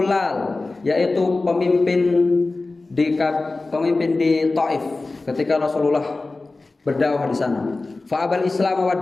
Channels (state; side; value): quieter; right; 3.4 dB